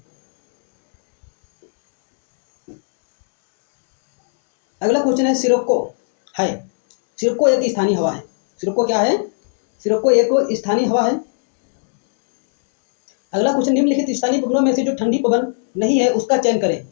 अगला क्वेश्चन है सिरोको है। सिरोको एक स्थानीय हवा है। सिरोको क्या है? सिरोको एक स्थानीय हवा है। अगला क्वेश्चन निम्नलिखित स्थानीय पवनों में से जो ठंडी पवन नहीं है उसका चयन करें।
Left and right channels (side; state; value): right; silent; 68 dB below the other